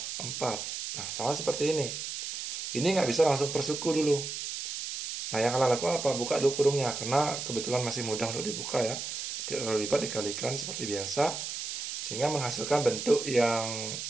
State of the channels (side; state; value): right; noise; hiss, 6 dB below the sound